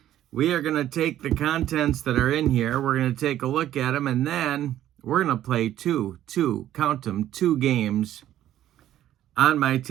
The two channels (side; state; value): left; quieter; 12.4 dB